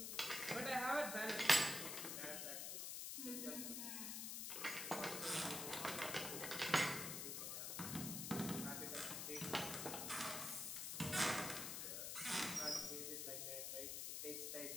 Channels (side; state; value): left; noise; hiss, 3 dB below the sound